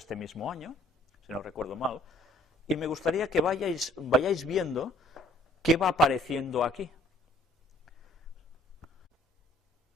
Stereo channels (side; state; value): both; normal; correlation 0.59